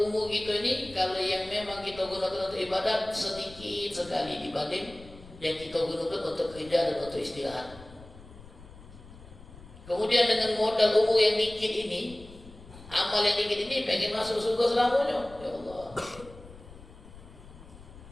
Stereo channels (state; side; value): noise; left; rumble, 19 dB below the sound